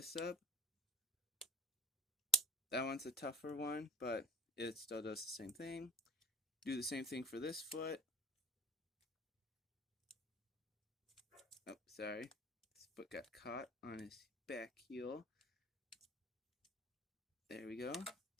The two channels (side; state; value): both; normal; correlation 0.48